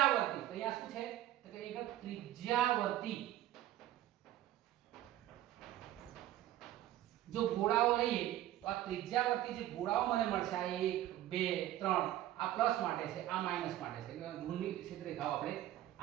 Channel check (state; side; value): quieter; left; 13.7 dB